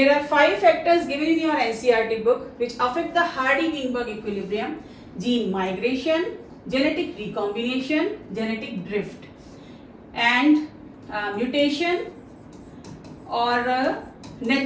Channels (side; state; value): both; identical; correlation 1.00